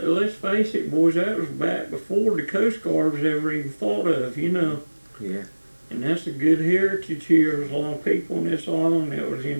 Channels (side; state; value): both; inverted; correlation -1.00